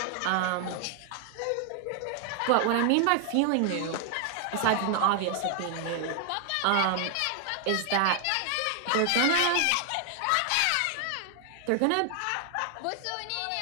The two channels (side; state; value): both; different; correlation 0.00